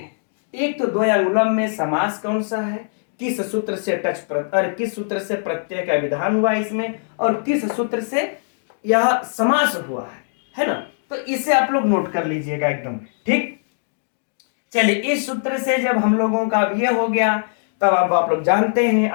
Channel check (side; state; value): right; silent; digital silence